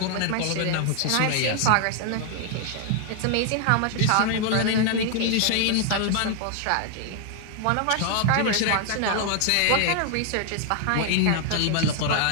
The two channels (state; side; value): different; both; correlation 0.00